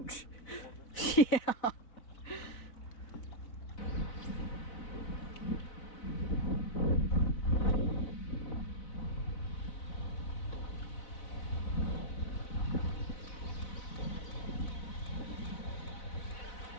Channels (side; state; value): right; late; 4.0 ms